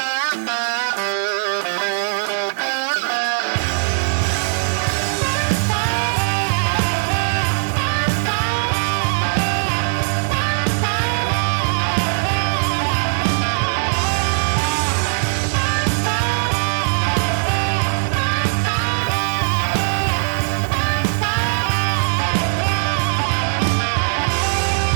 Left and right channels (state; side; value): silent; left; 62 dB below the other